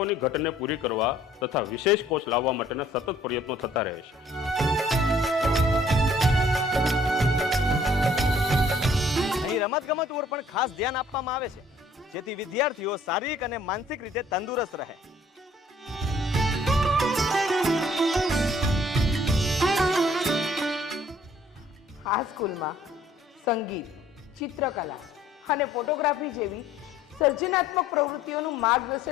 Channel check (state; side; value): normal; both; correlation 0.58